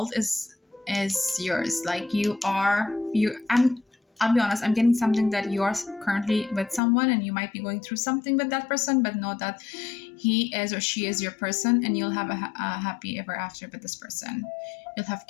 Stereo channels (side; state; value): right; drops out; at 6.8 s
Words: is yours. Like I'll be honest, I'm getting something that you are currently with someone and you might be going through something with that person, but know that he is or she is your person, and you'll have a happy ever after with this person. You'll have